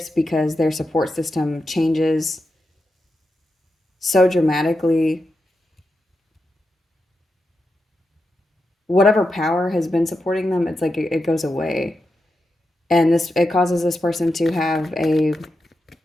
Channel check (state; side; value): normal; both; correlation 0.88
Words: because their support system changes so dramatically. Whatever power has been supporting them, it's like it goes away. And it causes this person to have a